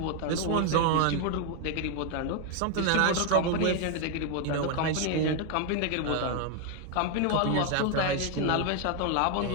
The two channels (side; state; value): both; different; correlation 0.01